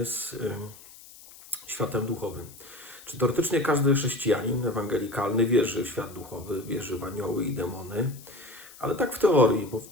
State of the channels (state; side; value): noise; left; hiss, 20 dB below the sound